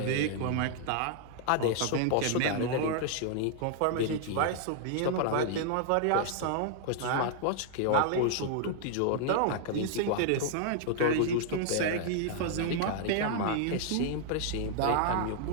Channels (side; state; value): both; different; correlation -0.01